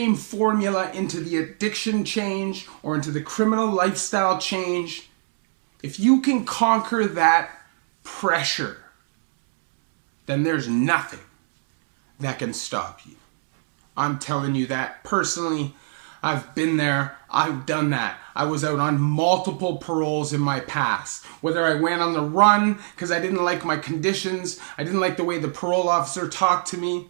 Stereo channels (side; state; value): left; silent; digital silence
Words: formula into the addiction change or into the criminal lifestyle change. If you can conquer that pressure, then there's nothing that can stop you. I'm telling you that personally. I've been there. I've done that. I was out on multiple paroles in my past. Whether I went on the run because I didn't like my conditions, I didn't like the way the parole officer talked to me,